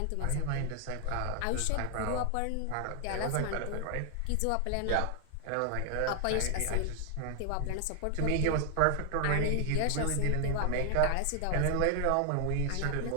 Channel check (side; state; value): both; different; correlation 0.00